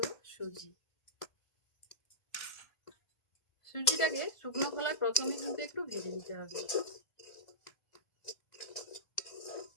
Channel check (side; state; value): right; late; 1.5 ms